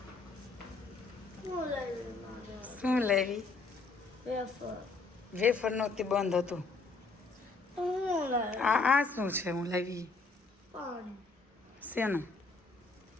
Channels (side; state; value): right; quieter; 4.0 dB